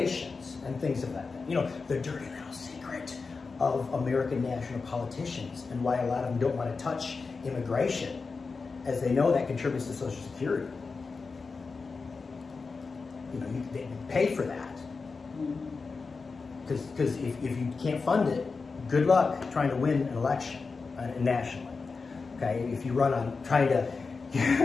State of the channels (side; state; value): right; quieter; 4.5 dB